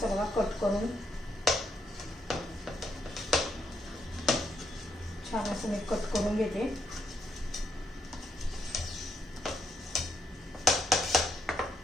बघा कट करून छान असं मी कट करून घेते.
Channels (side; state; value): both; normal; correlation 0.77